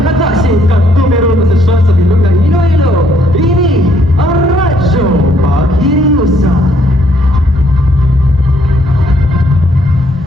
at numero na sa bilog na Iloilo. Ini ang Radyo Paghiriusan.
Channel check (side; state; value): both; normal; correlation 0.68